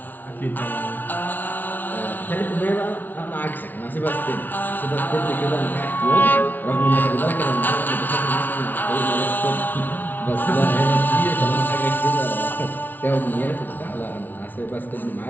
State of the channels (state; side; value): late; right; 0.085 ms